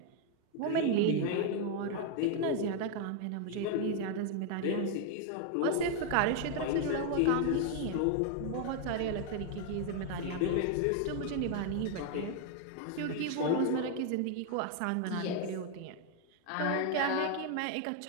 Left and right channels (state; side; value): different; both; correlation 0.00